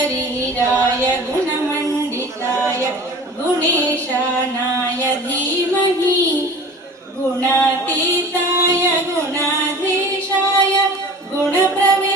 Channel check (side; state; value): both; normal; correlation 0.41